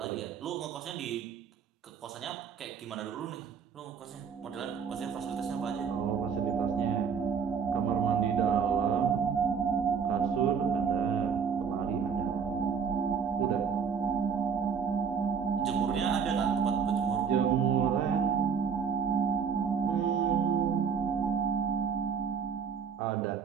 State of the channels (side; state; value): left; quieter; 6.6 dB